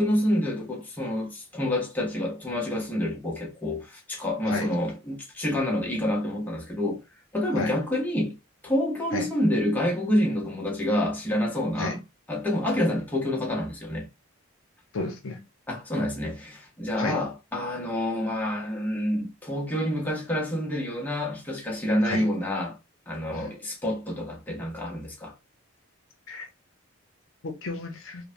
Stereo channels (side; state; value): both; normal; correlation 0.65